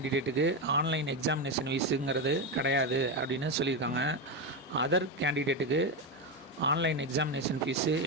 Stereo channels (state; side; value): normal; both; correlation 0.12